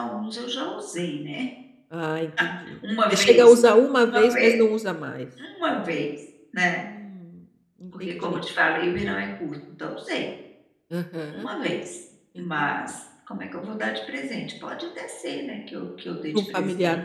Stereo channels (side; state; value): both; identical; correlation 1.00